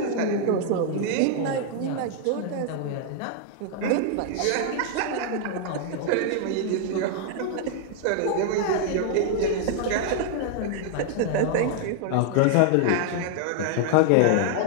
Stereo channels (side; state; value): both; different; correlation 0.00